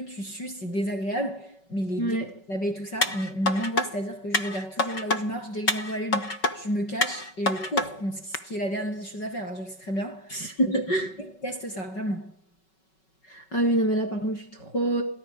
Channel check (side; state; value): right; late; 5.3 ms